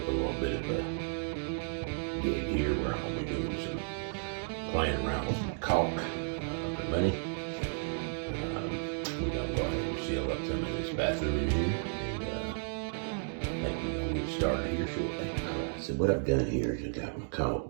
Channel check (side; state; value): left; silent; digital silence